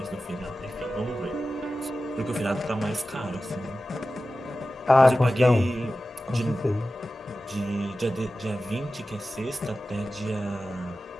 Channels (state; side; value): normal; both; correlation 0.94